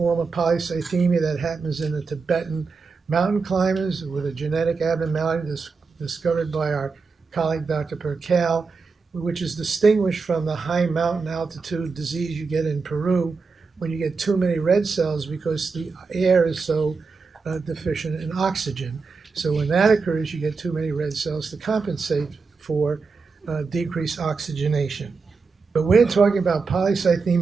of polycythemia that happens in the Tibetan mountain climbers with a genetic abnormality discovered by our colleague Dr. Percal, which is distinguished from the high mountain altitude disease you get in Peru when you get too many red cells because the air is so deficient in oxygen. So when that occurs, you get too many red cells to compensate for decreased oxygenation. But we're talking about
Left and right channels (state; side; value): quieter; left; 4.7 dB